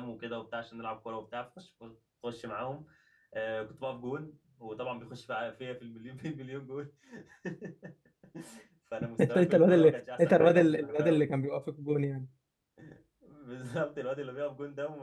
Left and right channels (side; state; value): both; identical; correlation 1.00